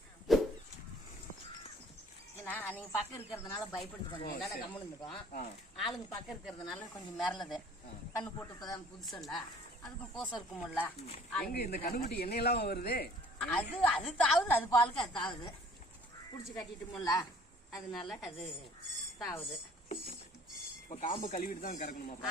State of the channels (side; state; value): both; normal; correlation 0.54